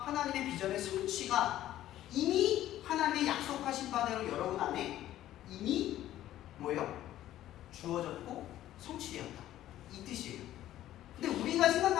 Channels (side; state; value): right; quieter; 13.3 dB